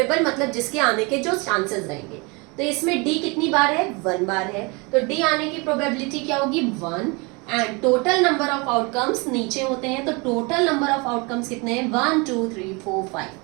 मतलब जिसके आने के जो चांसेस रहेंगे, तो इसमें डी कितनी बार है, 1 बार है, तो डी आने की प्रोबेबिलिटी क्या होगी, 1। And total number of outcomes नीचे होते हैं, तो टोटल नंबर ऑफ आउटकम्स कितने हैं, 1 2 3 4 5।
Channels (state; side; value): quieter; left; 28.9 dB